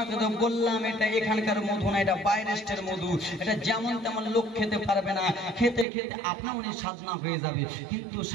তো বললাম এটা এখানকার মধু না, এটা বাইরের মধু, এটা যেমন তেমন লোক খেতে পারবে না, খেতে খেতে আপনা মনে সাধনা হয়ে যাবে। কিন্তু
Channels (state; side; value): drops out; left; at 5.9 s